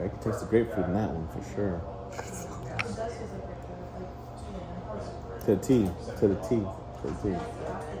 can taste the grapefruit in that one for sure. To the T, to the T, to the T.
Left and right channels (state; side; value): identical; both; correlation 1.00